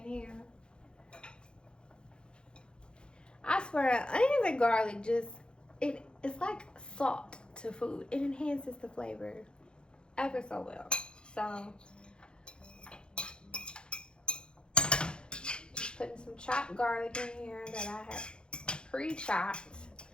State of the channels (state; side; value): late; right; 0.051 ms